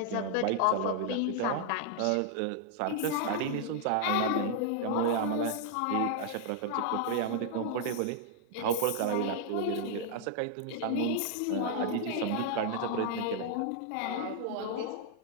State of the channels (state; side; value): different; both; correlation -0.01